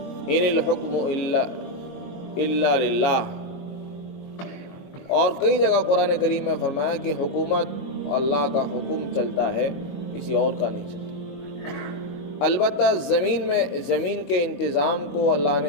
ان الحکم الا للہ۔ اور کئی جگہ قرآن کریم میں فرمایا کہ حکومت اللہ کا حکم چلتا ہے، کسی اور کا نہیں چلتا۔ البتہ زمین کے انتظام کو اللہ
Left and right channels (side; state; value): right; late; 22 ms